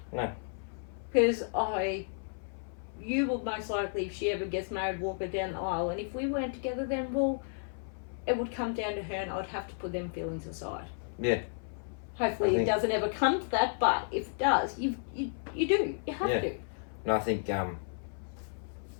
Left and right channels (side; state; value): right; silent; 56 dB below the other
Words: No. Because I you will most likely, if she ever gets married, walk her down the aisle. And if we weren't together, then well, it would come down to her, and I'd have to put them feelings aside. Yeah. Hopefully, it doesn't ever come to that. But if it does, you do. You have to. And I think